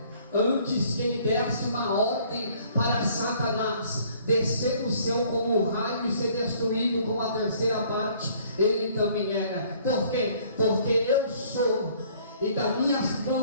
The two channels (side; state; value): both; inverted; correlation -0.58